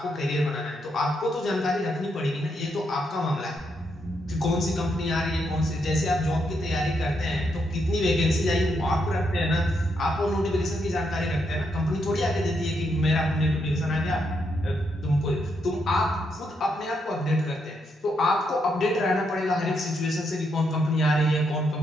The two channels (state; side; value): normal; both; correlation 0.79